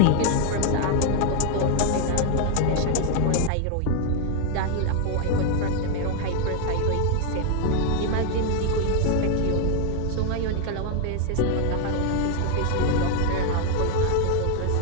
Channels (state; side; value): different; both; correlation 0.00